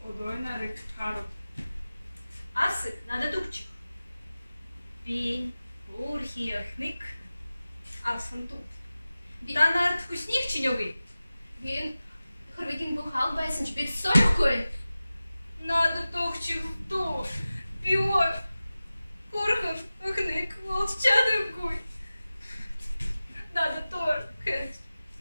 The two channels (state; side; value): inverted; both; correlation -0.96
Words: одой нарик хару. Асы, надо тупчик. Пин, урхиахник, асын тут. Танарт вкусних чинёгы. Вин, хорвикин бухал байсен, шпит сорокой. Надо тохчик в то. Пиор. Курхан, ахник, волчадовкой. Надо тор, хэнч.